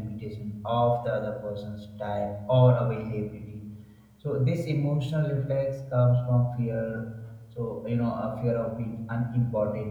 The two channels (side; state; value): both; identical; correlation 1.00